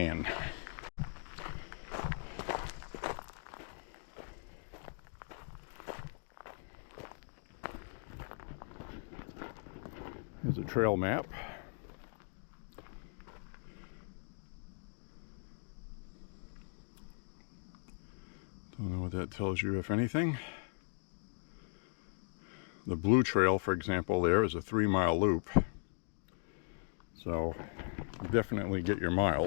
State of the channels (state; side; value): silent; right; 52 dB below the other